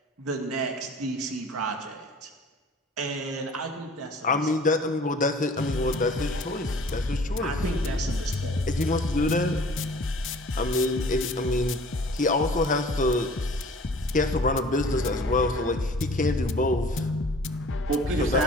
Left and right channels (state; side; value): normal; both; correlation 0.49